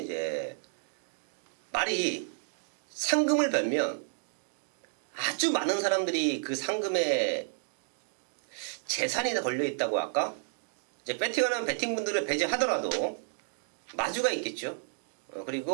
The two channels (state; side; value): silent; left; digital silence